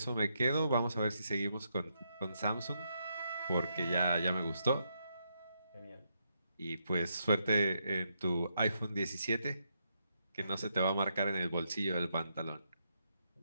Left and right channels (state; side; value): inverted; both; correlation -0.79